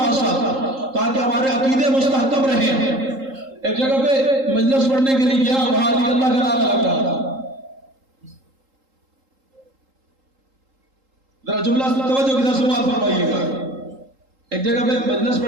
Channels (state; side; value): late; left; 3.8 ms